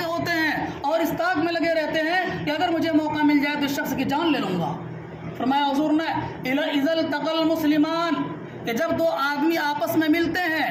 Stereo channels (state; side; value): identical; both; correlation 1.00